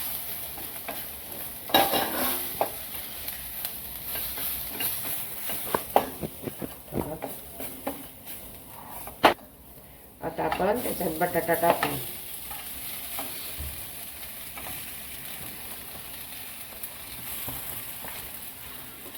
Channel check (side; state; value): both; identical; correlation 1.00